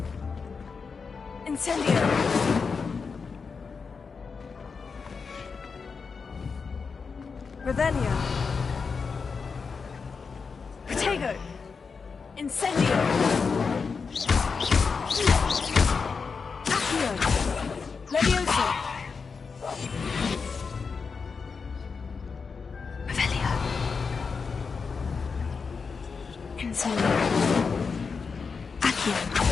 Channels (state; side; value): quieter; right; 5.2 dB